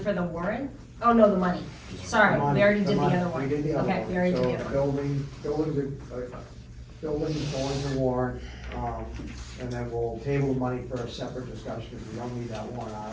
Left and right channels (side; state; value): both; identical; correlation 1.00